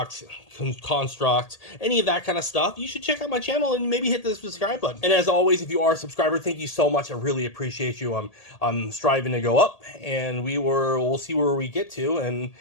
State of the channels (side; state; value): right; late; 1.8 ms